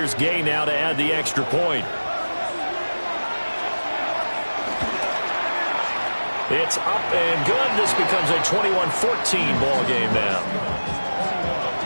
Gay now to add the extra point. It's up and good. This becomes a 21-14 ball game now.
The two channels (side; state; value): both; inverted; correlation -1.00